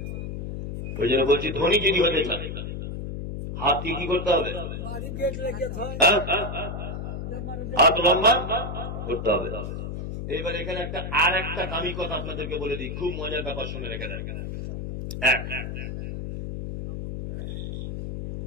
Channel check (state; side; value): noise; left; hum, 6 dB below the sound